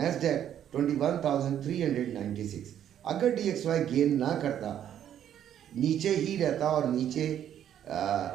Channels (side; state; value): left; quieter; 10.2 dB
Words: 21,396। अगर DXY गेन ना करता, नीचे ही रहता और नीचे